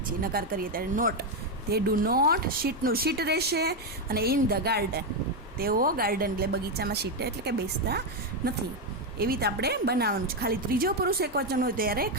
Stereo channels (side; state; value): both; normal; correlation 0.05